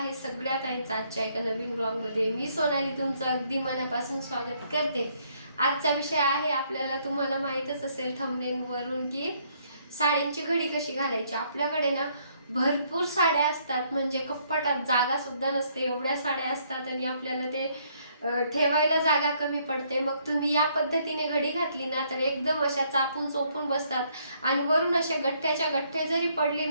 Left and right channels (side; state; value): both; inverted; correlation -0.68